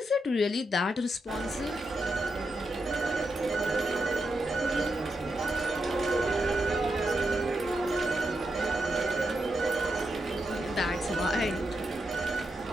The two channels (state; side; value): normal; both; correlation 0.85